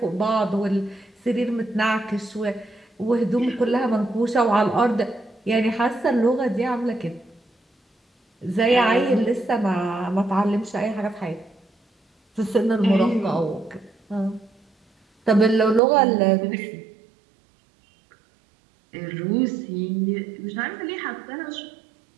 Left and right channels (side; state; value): left; drops out; at 15.8 s